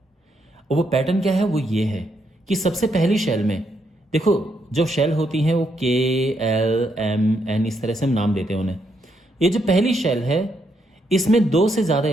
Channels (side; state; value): both; normal; correlation 0.77